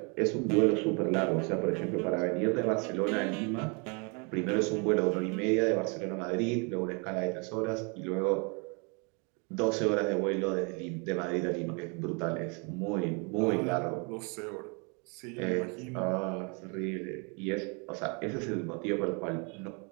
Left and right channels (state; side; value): quieter; left; 33.5 dB